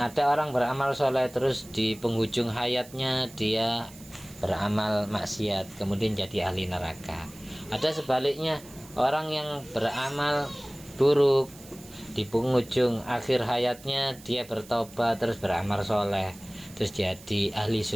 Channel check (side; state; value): right; noise; hiss, 20 dB below the sound